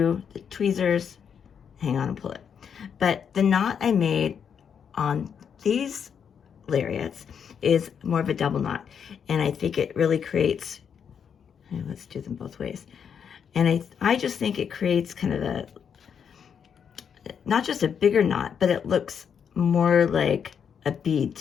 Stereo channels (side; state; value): right; quieter; 7.4 dB